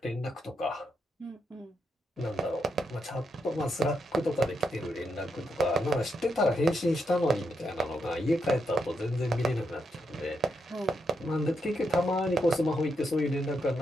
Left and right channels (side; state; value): both; normal; correlation 0.81